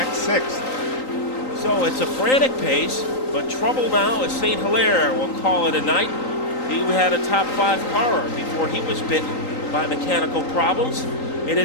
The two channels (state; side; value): late; right; 3.9 ms